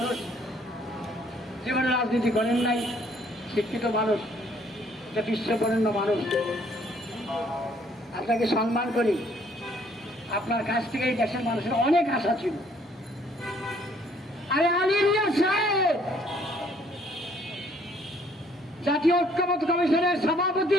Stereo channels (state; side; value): normal; both; correlation 0.63